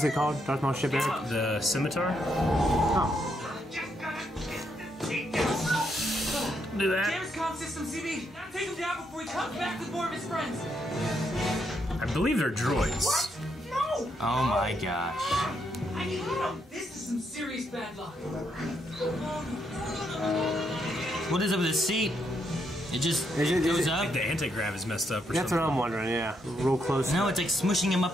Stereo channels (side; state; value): both; normal; correlation 0.77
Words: it called? Darth Maul ship, Eric? The scimitar. Oh. Do that. Damn his comm system, CB. Take him down before he comes back with more of his friends. I believe they're droids. No! Oh my gosh. I hate him. This is some serious bad luck. What is up with his seat? It just Is it- goes is it- up? The anti-grav is messed up or That's something. what I'm wondering, yeah. Real close. No, it's like smushing him